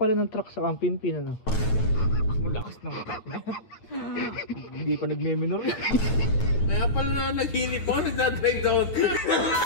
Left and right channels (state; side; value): late; right; 9.2 ms